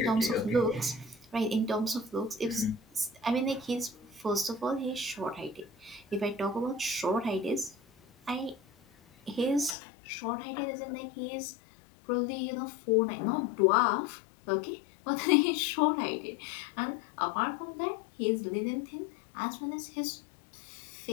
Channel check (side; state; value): right; drops out; at 9.8 s